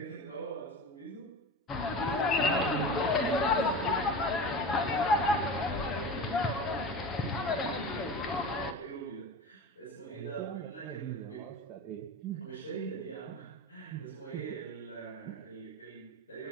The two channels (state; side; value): normal; both; correlation 0.31